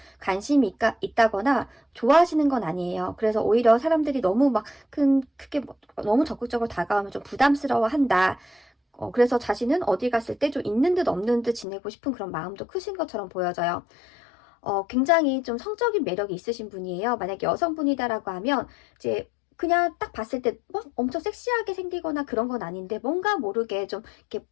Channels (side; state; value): right; drops out; at 11.7 s